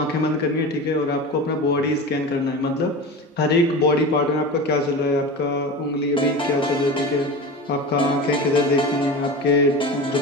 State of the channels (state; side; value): normal; both; correlation 0.29